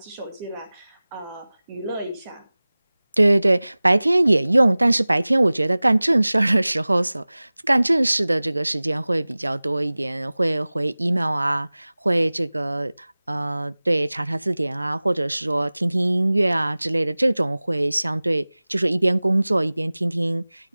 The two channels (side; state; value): both; inverted; correlation -0.99